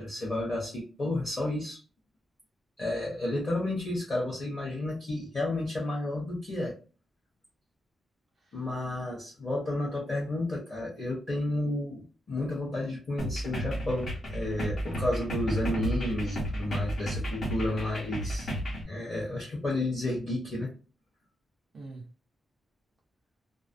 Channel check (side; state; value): both; normal; correlation 0.83